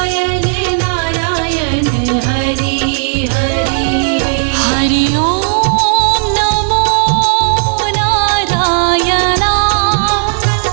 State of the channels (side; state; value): left; silent; 61 dB below the other